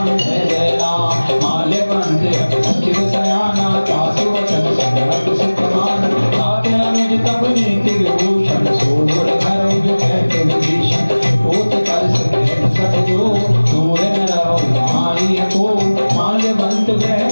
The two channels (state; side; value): inverted; both; correlation -1.00